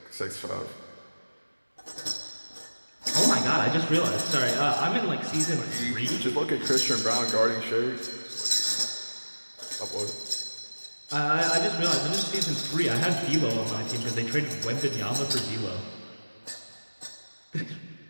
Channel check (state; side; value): inverted; both; correlation -1.00